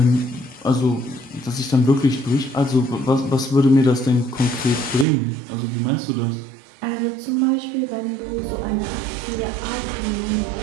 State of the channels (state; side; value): drops out; left; at 5.1 s